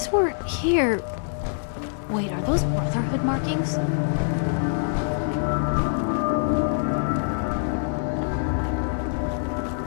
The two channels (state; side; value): silent; right; digital silence